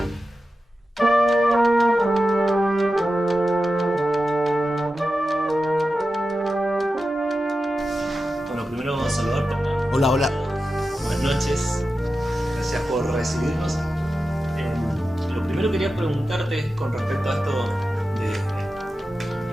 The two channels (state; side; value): normal; both; correlation 0.92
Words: Bueno, primero vamos a saludarte. Hola, hola. Buenas noches. Gracias por recibirnos. Lo primero que quería preguntarte es con respecto a esto de